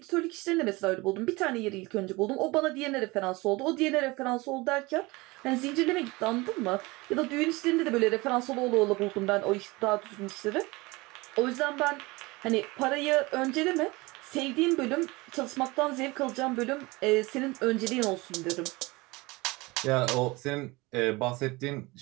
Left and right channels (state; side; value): quieter; left; 23.1 dB